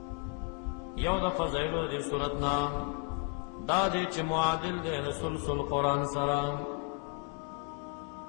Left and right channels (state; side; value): quieter; right; 34.2 dB